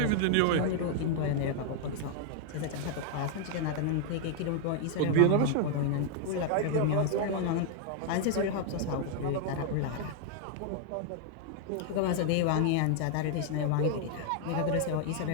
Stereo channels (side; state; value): both; different; correlation 0.00